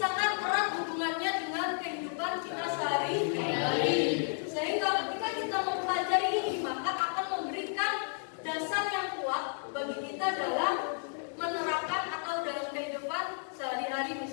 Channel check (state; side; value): silent; right; 56 dB below the other